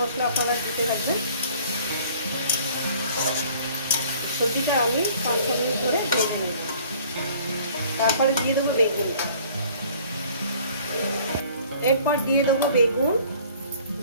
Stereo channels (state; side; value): inverted; both; correlation -0.53